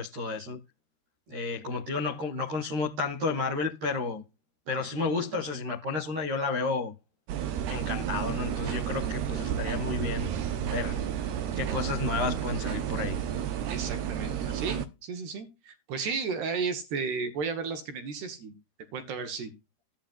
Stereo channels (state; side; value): late; left; 13 ms